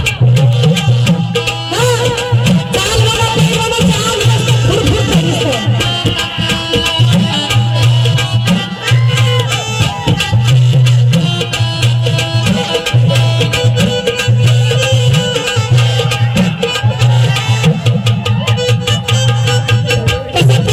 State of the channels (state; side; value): identical; both; correlation 1.00